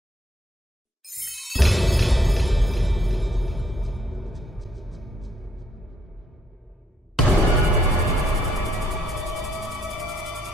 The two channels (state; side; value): normal; both; correlation 0.71